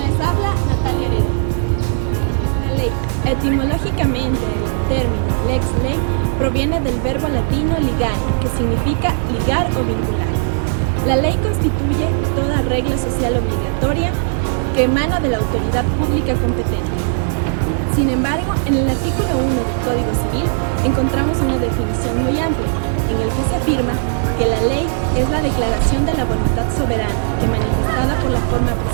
les habla, Natalia Heredia. La ley. Etimológicamente, el término lex ley proviene del verbo latino ligare, que significa ligar o vincular. La ley constituye toda regla social obligatoria que emana de la autoridad pública competente. Sin embargo, en el artículo 1 del Código Civil encontramos una definición muy amplia, en el que se afirma que la ley es la declaración de la voluntad soberana que, manifestada por la forma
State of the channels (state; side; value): silent; left; 65 dB below the other